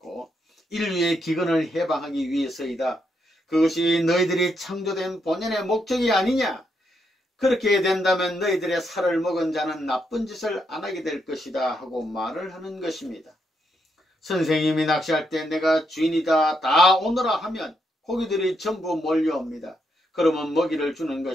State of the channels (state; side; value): normal; both; correlation 0.79